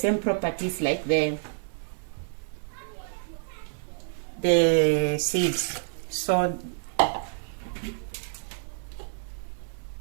properties like the seeds. So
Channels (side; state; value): left; silent; 58 dB below the other